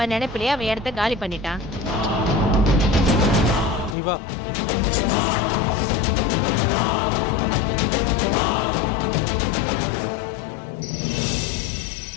நினைப்பிலேயே அவன் இடத்த காலி பண்ணிட்டான். நீ வா.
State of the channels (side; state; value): right; drops out; at 4.0 s